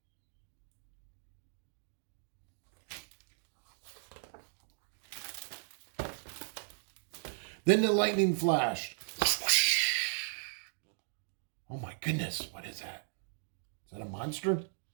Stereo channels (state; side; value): silent; left; digital silence